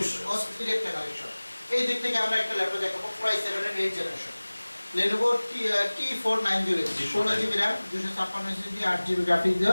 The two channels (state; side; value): inverted; both; correlation -1.00